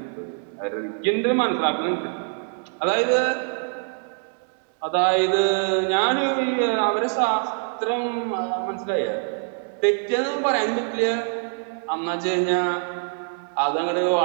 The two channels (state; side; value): silent; left; 56 dB below the other